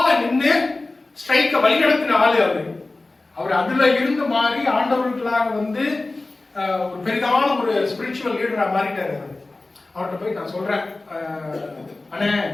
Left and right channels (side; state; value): right; quieter; 3.2 dB